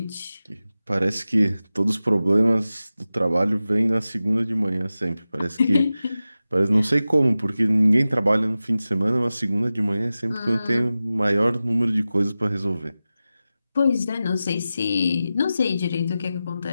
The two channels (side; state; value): both; inverted; correlation -0.94